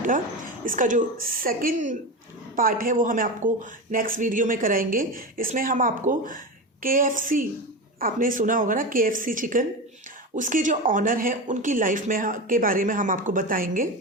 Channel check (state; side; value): normal; both; correlation 0.21